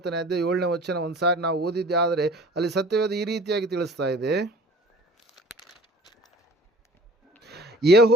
ಅಧ್ಯಾಯ 7ನೇ ವಚನ ಒಂದು ಸಾರಿ ನಾವು ಓದಿದ್ದೆ ಆದರೆ ಅಲ್ಲಿ ಸತ್ಯವೇದ ಈ ರೀತಿಯಾಗಿ ತಿಳಿಸ್ತಾ ಇದೆ,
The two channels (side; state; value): both; normal; correlation 0.46